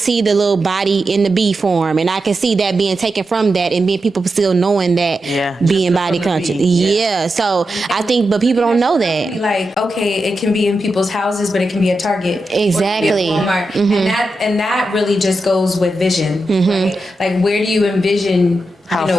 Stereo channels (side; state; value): both; normal; correlation 0.89